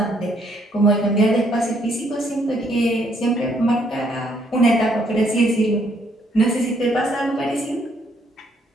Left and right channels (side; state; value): both; normal; correlation 0.69